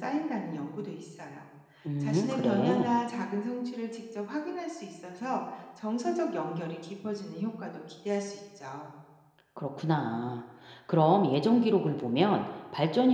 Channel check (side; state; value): both; identical; correlation 1.00